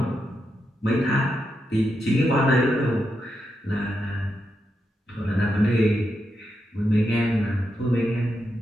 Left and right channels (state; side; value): normal; both; correlation 0.85